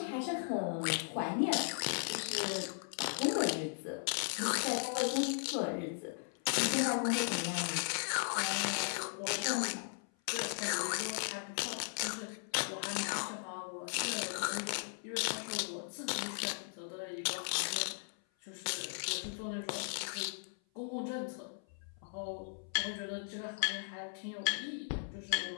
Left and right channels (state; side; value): silent; right; 53 dB below the other